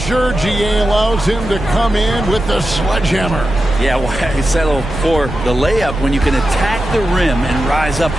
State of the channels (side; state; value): right; noise; rumble, 9 dB below the sound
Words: GA allows him to come in with the sledgehammer. Yeah, why settle for the layup when you can attack the rim and rise up